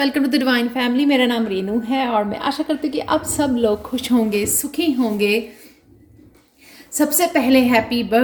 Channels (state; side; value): identical; both; correlation 1.00